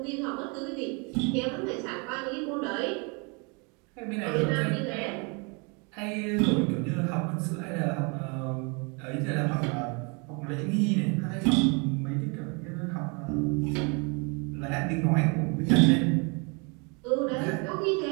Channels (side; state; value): left; quieter; 32.6 dB